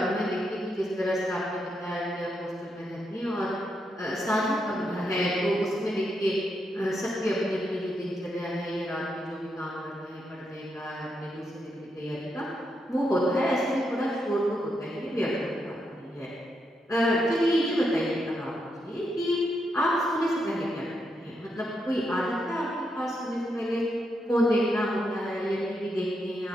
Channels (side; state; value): both; normal; correlation 0.82